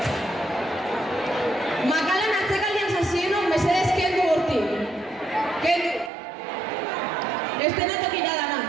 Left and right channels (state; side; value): drops out; left; at 6.1 s